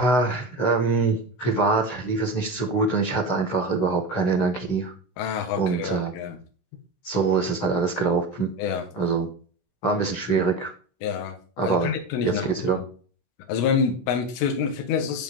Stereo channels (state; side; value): late; right; 16 ms